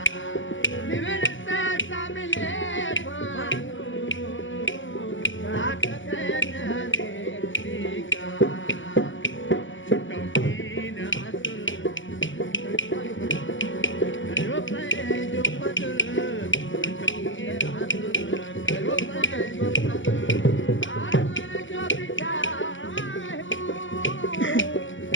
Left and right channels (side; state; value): right; late; 0.55 ms